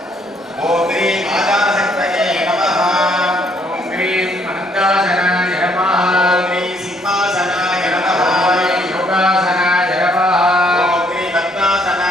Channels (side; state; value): both; normal; correlation 0.67